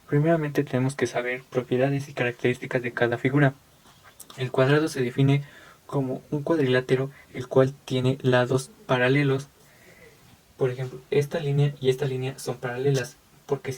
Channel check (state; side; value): identical; both; correlation 1.00